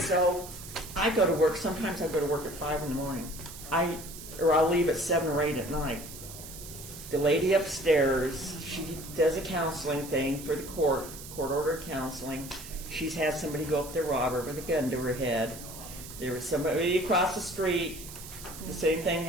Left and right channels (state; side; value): noise; right; hiss, 13 dB below the sound